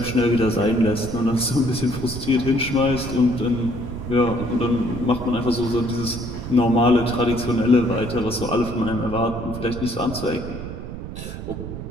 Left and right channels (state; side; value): noise; right; rumble, 9 dB below the sound